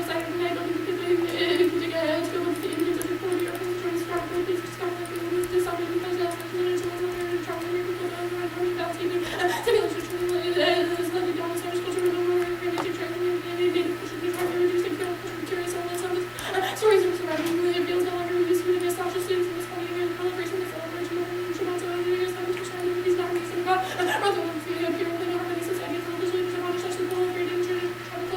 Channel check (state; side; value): identical; both; correlation 1.00